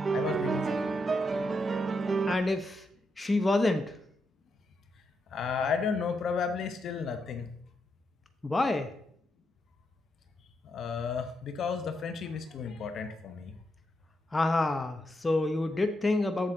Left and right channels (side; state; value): both; normal; correlation 0.82